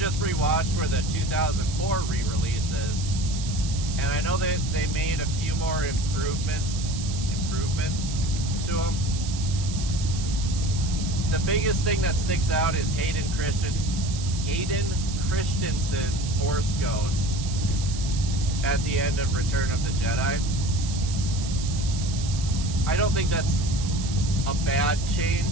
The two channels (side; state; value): right; noise; hiss, 10 dB below the sound